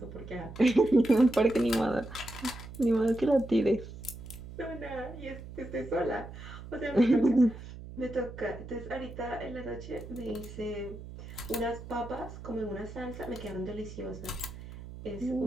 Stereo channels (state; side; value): noise; right; hum, 13 dB below the sound